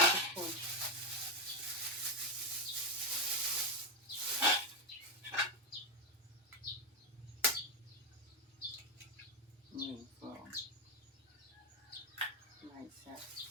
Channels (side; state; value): both; normal; correlation 0.07